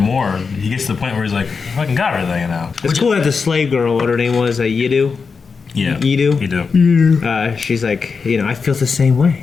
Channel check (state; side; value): quieter; right; 5.2 dB